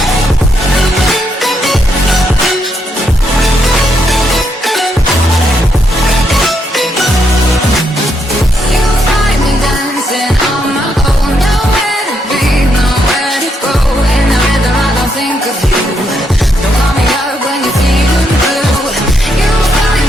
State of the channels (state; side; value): normal; both; correlation 0.78